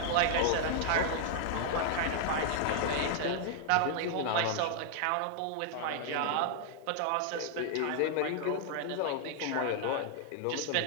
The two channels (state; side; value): different; both; correlation 0.00